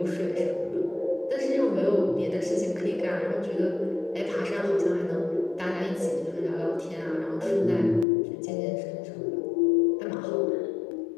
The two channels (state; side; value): drops out; right; at 8.1 s